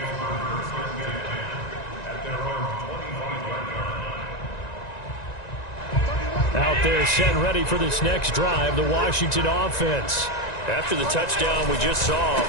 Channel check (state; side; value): late; right; 1.9 ms